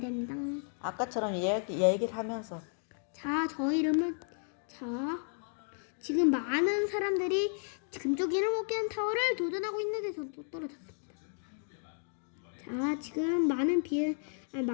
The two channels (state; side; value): silent; right; 56 dB below the other